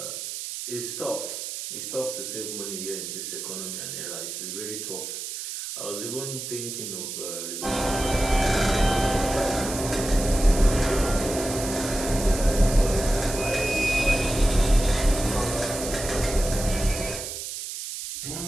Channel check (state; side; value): noise; right; hiss, 7 dB below the sound